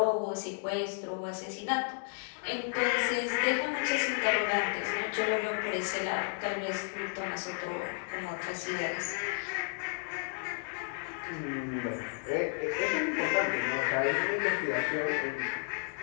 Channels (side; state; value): right; silent; 56 dB below the other